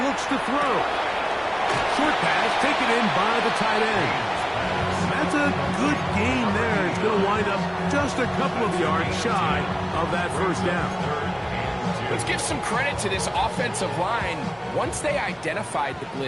looks to throw. Short pass taken in by the tight end. That's a good gain there. It's going to wind up just a couple of yards shy of that 1st down. Let's give some credit to this offensive line. Once they identified the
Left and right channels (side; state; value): both; identical; correlation 1.00